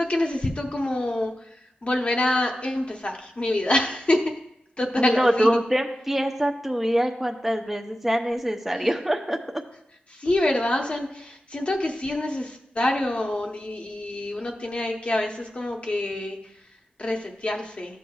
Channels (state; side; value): normal; both; correlation 0.93